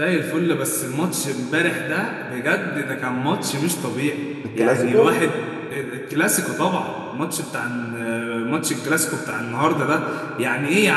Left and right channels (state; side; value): identical; both; correlation 1.00